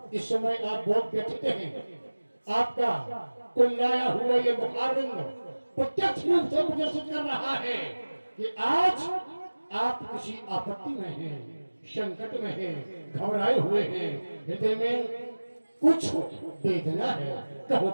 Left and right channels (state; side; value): inverted; both; correlation -1.00